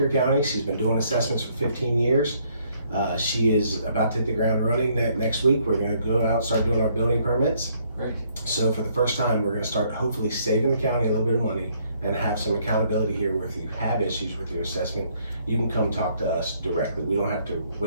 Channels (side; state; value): both; inverted; correlation -0.68